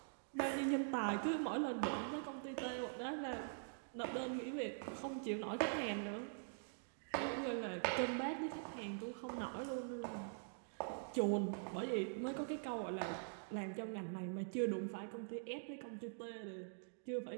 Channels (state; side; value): silent; left; digital silence